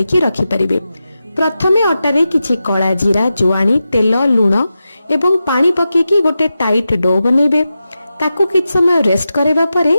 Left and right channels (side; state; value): both; inverted; correlation -0.91